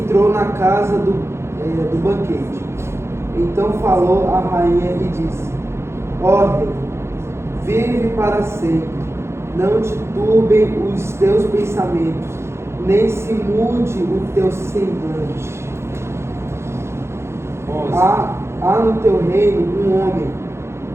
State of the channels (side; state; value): left; late; 0.13 ms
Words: na casa do banquete. Então falou a rainha e disse: ó rei, vive para sempre, não te turbem os teus pensamentos, nem se mude o teu semblante. 11. Há no teu reino um homem,